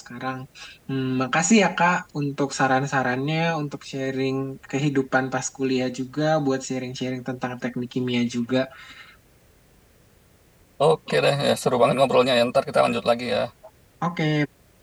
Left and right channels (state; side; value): identical; both; correlation 1.00